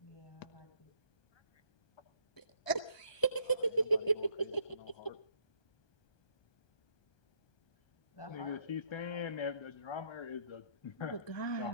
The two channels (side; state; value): right; late; 1.2 ms